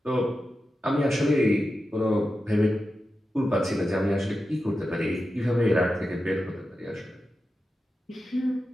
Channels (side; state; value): both; normal; correlation 0.91